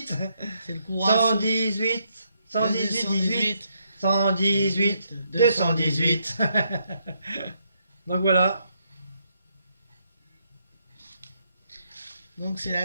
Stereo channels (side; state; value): both; inverted; correlation -0.75